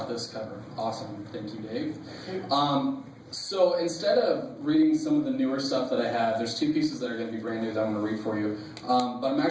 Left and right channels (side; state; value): both; identical; correlation 1.00